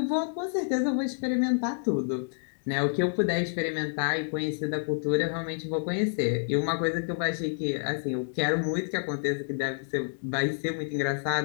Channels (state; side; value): silent; right; digital silence